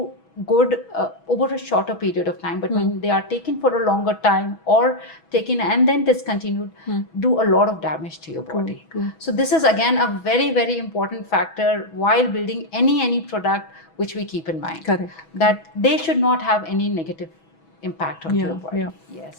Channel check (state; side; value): late; right; 6.1 ms